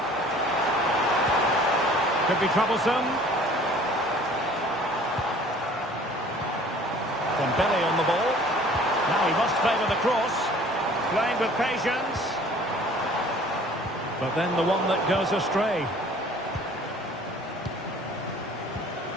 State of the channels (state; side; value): normal; both; correlation 0.51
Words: Could be troublesome. Dembele on the ball. Now he must favour the cross. Playing with patience. But then the one that goes astray.